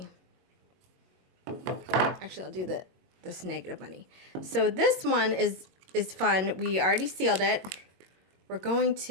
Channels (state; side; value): late; left; 21 ms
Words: Actually, I'll do this negative bunny. So this one is fun. We already sealed it. We're going